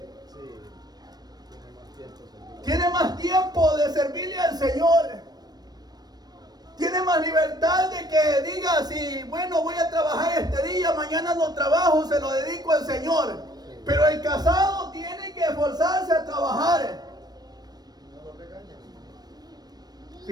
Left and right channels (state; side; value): late; left; 0.19 ms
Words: Tiene más tiempo de servirle al Señor. Tiene más libertad de que diga, si bueno, voy a trabajar este día, mañana no trabajo, se lo dedico al Señor. Pero el casado tiene que esforzarse a trabajar.